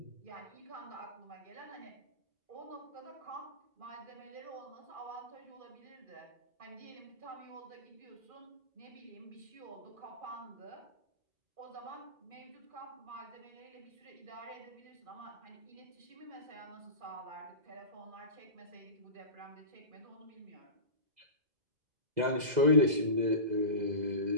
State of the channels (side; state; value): left; late; 2.0 ms